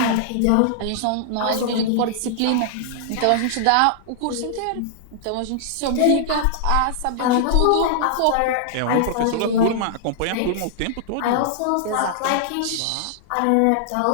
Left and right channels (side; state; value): both; different; correlation -0.01